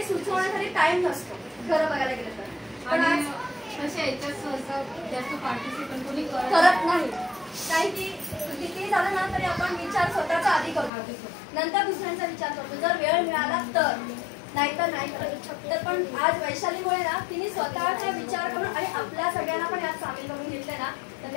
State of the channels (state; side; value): drops out; right; at 10.9 s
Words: सुचवण्यासाठी टाइम नसतो खरं बघायला गेलं तर. पण आज अशा याच्यात जास्त पार्टिसिपेट कोणी करत नाही. काही की किती झालं ना तरी आपण विचार स्वतःचा आधी करतो, नंतर दुसऱ्यांचा विचार करतो, जर वेळ मिळाला तर, नाहीतर नाही करत. तर पण आज वैशालीमुळे ना तिने स्वतःचा विचार करून आणि आपल्या सगळ्यांना पण यात सामील करून घेतले ना, तर